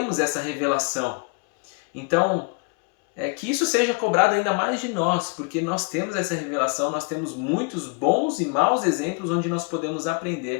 essa revelação. Então, que isso seja cobrado ainda mais de nós, porque nós temos essa revelação, nós temos muitos bons e maus exemplos onde nós podemos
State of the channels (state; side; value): quieter; right; 34.1 dB